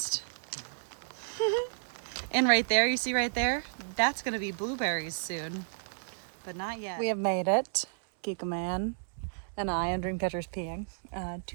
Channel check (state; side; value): silent; left; digital silence